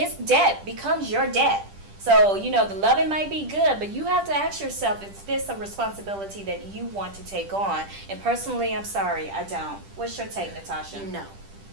debt becomes your debt. So, the loving might be good, but you have to ask yourself, is this a responsibility that you want to take on? And personally, I'm sorry, I don't. What's your take, Natasha? No.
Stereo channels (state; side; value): late; left; 10 ms